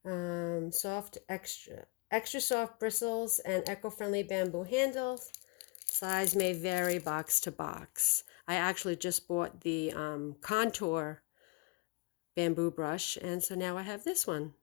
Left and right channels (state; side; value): quieter; right; 28.4 dB